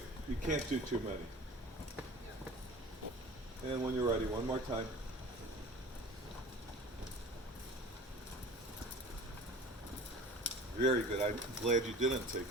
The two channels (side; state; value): both; normal; correlation 0.41